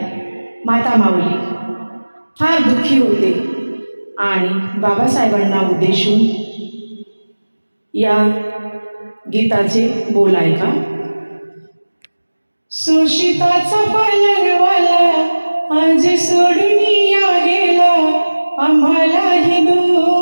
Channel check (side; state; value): both; inverted; correlation -1.00